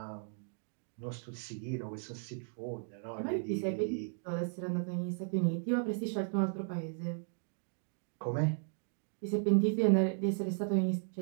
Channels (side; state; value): left; silent; 54 dB below the other